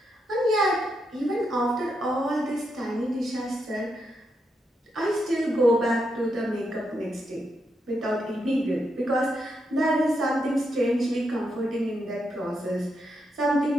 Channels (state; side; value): normal; both; correlation 0.82